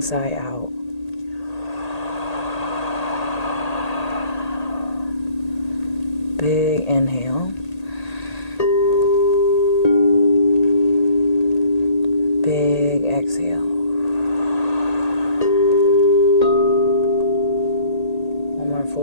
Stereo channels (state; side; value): late; right; 1.8 ms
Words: sigh out. Big inhale. Big exhale. One more